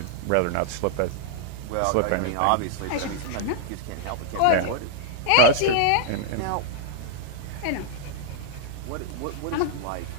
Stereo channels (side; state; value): both; different; correlation -0.01